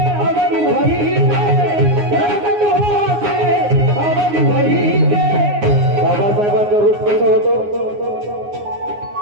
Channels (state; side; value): late; left; 9.7 ms